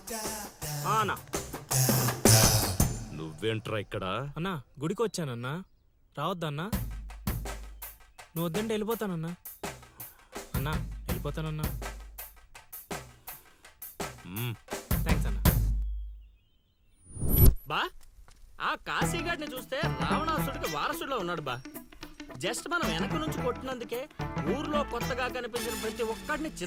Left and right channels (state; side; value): identical; both; correlation 1.00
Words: అన్నా నువ్వేంట్రా ఇక్కడ? అన్నా గుడికి వచ్చానన్నా, రావద్దన్నా. నువ్వు వద్దంటే వెళ్ళిపోతానన్నా. అన్నా వెళ్ళిపోతానన్నా. థ్యాంక్స్ అన్నా. బా ఆ కాశీగాడిని చూస్తే రావణాసుడికి వారసుడిలో ఉన్నాడు బా. జస్ట్ మనం వెనక నుంచి కొట్టినందుకే ఊర్లో కొత్తగా కనిపించిన ప్రతి ఒక్కడిని